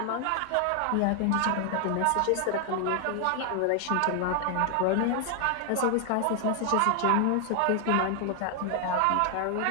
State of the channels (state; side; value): different; both; correlation 0.00